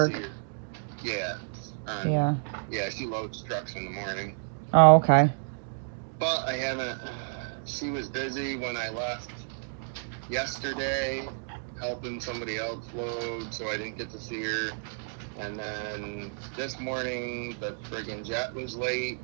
Yeah. Yeah. Yeah, she loads trucks in the morning. Oh, okay. But I haven't. She was busy when I left yesterday, helping somebody else load, so I didn't get to see her. And then this morning, the friggin' jet was late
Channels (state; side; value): silent; left; digital silence